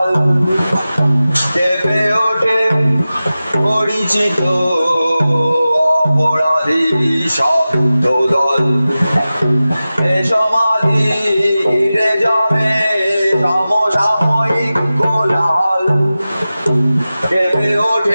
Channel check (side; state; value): both; inverted; correlation -0.95